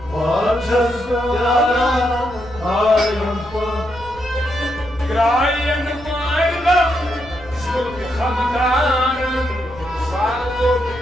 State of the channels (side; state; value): left; noise; rumble, 19 dB below the sound